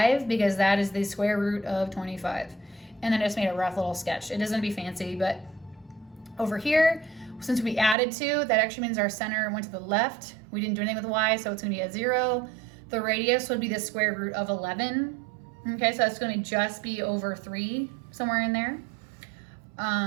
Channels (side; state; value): left; drops out; at 8.0 s